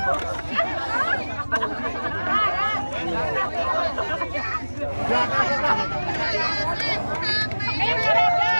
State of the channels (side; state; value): both; inverted; correlation -1.00